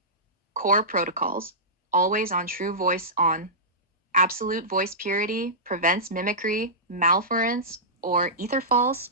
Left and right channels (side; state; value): both; normal; correlation -0.17